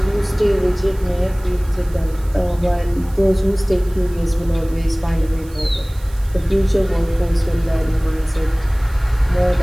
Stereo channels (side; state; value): right; noise; hiss, 23 dB below the sound